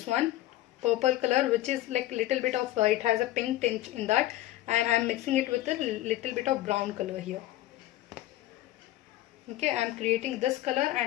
one, purple color, which is like little bit of it has a pink tinge in that, and I am mixing it with a little bit of brown color here. Okay, I am creating this color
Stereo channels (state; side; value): quieter; right; 15.4 dB